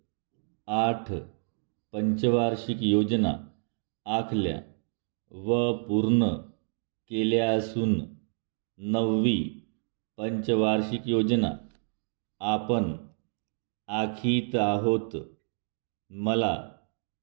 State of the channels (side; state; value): left; silent; 57 dB below the other